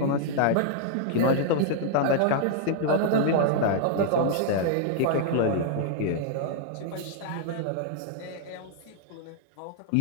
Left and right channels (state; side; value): different; both; correlation -0.01